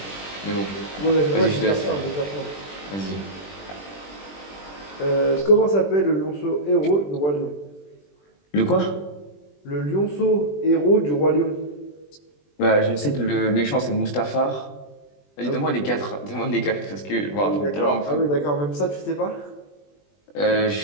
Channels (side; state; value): right; late; 20 ms